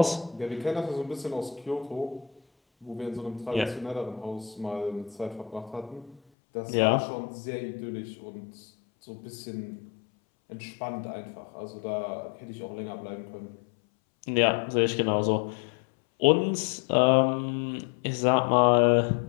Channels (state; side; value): drops out; right; at 6.2 s